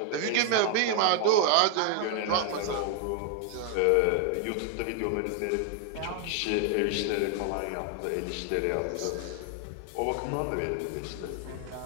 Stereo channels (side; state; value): both; different; correlation 0.00